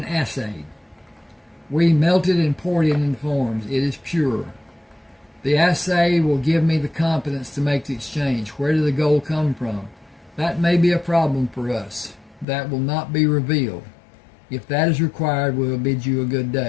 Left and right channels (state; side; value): drops out; right; at 12.5 s